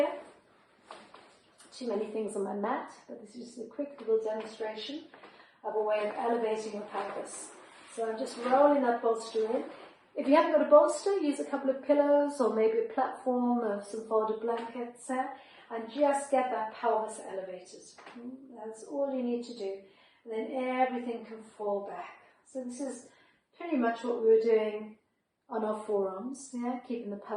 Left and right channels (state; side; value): identical; both; correlation 1.00